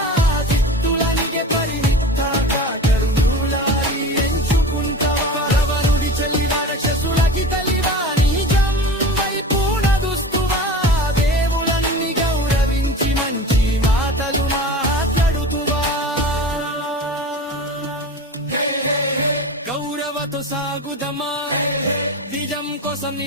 చిత్తులనిగే పరిమితాగా కరుణులారి ఎంచుకుంటావా రావణుడి చెల్లివా రాక్షసులకి తల్లివా నిజం వైపు నడుస్తువా దేవులన్నీ గౌరవించి మంచి మాటలు మాట్లాడుతువా గౌరవతో సాగుదమా నిజం కోసం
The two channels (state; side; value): normal; both; correlation 0.33